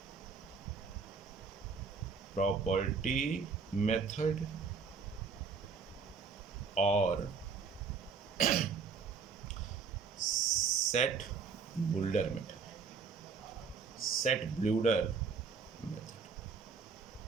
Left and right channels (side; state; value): left; quieter; 5.4 dB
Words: मेथड और set builder method. Set builder method